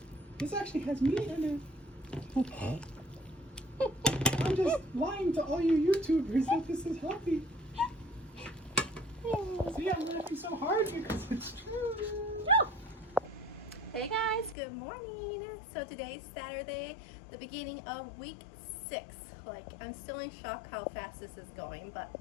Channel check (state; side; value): drops out; right; at 14.6 s